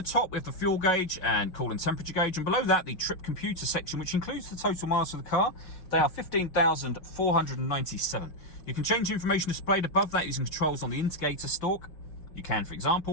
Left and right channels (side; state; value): right; late; 5.4 ms